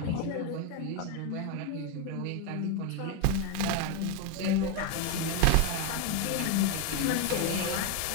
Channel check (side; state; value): both; different; correlation 0.02